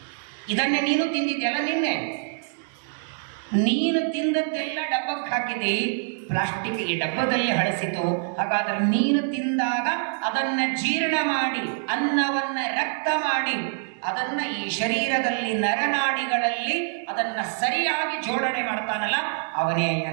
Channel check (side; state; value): left; silent; digital silence